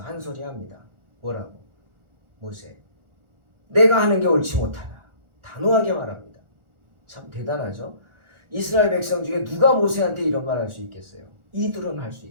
한 소리 합니다. 뭐라고? 모세, 내가 하는 게 옳지 못하다. 단호하게 말합니다. 참 대단하죠? 이스라엘 백성 중에 누가 모세한테 이런 말 할 수 있겠어요? 이드로는 할 수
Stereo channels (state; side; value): late; left; 1.4 ms